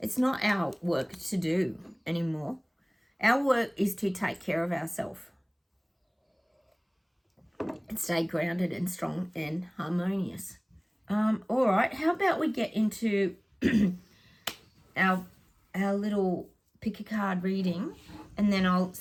not our work to do anymore. Our work is to take care of ourselves and stay grounded and strong and harmonious. All right, how about we get into our little pick a card reading, and then I'll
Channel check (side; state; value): both; identical; correlation 1.00